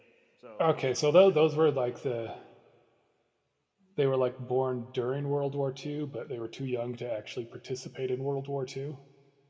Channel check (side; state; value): both; identical; correlation 1.00